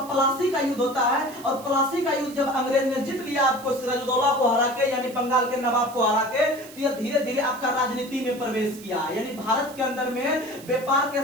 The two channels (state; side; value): noise; right; hiss, 19 dB below the sound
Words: प्लासी का युद्ध होता है। और प्लासी का युद्ध जब अंग्रेज ने जीत लिया आपको सिराजुद्दौला को हरा के, यानी बंगाल के नवाब को हरा के, तो यह धीरे धीरे आपका राजनीति में प्रवेश किया। यानी भारत के अंदर में व्यापार के